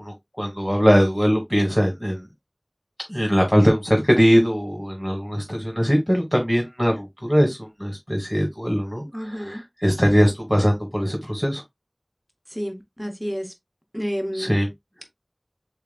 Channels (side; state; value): both; identical; correlation 1.00